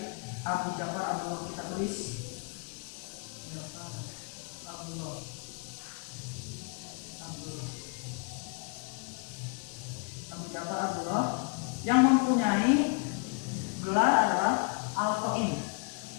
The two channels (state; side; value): quieter; right; 33.8 dB